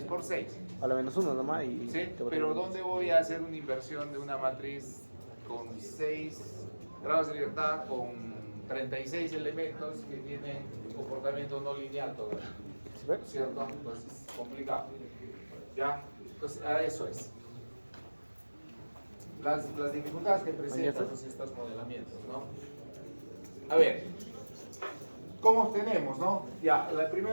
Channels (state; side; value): inverted; both; correlation -1.00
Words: por 6. A la menos 1 nomás y... ¿Sí? te va a Pero tener- ¿dónde voy a hacer una inversión de una matriz con 6 grados de libertad, con 36 elementos que tienen comportamiento no lineal todavía? ¿Sí ves? ¿Cierto? Entonces, complicado. ¿Ya? Entonces, a eso es. Las dificultades que presentan pues, estos modelamientos, ¿no? A ver, ¿cómo obtenemos, no? Ya,